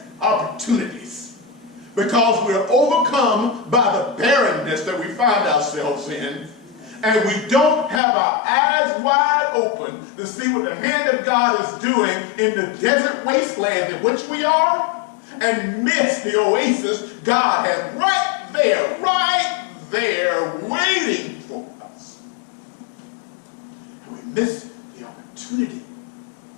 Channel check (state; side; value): drops out; right; at 8.0 s